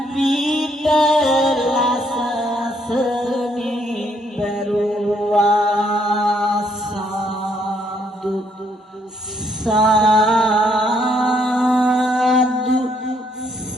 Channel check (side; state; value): both; normal; correlation 0.70